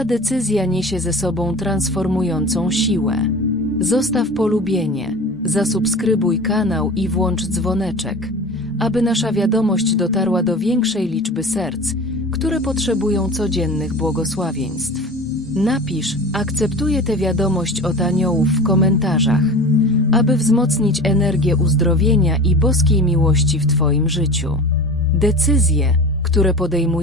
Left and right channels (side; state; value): both; normal; correlation 0.35